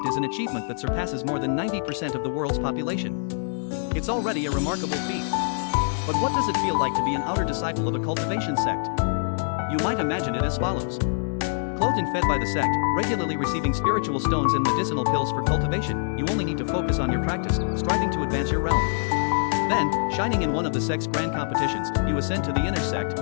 is an achievement that surpasses more than 90% of the world's population. It's already a remarkable feat. But what does it feel like to be an outer disciple of a cultivation sect? You might imagine it as follows. Clothed and fed by the sect, regularly receiving spiritual stones and medicinal pills for cultivation, you only need to focus on your practice, striving to advance your realm. Then, shining in one of the sect's grand competitions, you ascend to the inner sect,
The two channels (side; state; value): right; silent; digital silence